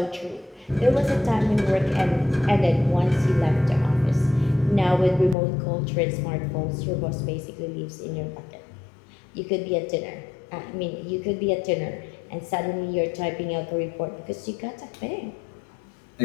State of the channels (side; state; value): right; drops out; at 5.4 s